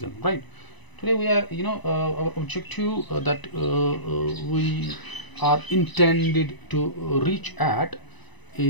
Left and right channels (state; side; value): late; right; 1.0 ms